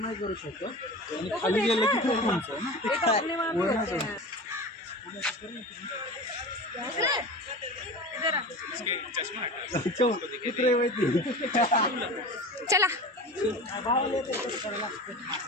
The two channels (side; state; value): both; normal; correlation 0.32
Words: नाही करू शकत आणि खाली गेलं की खूप उंच आहे ना. चला